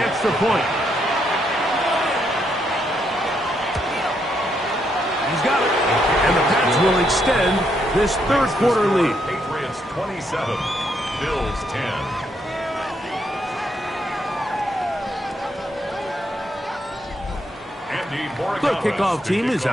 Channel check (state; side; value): normal; both; correlation 0.76